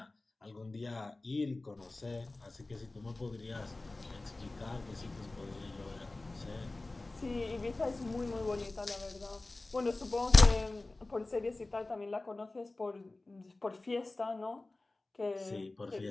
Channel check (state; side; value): quieter; right; 3.1 dB